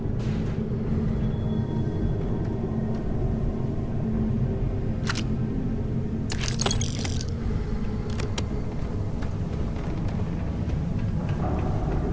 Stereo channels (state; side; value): identical; both; correlation 1.00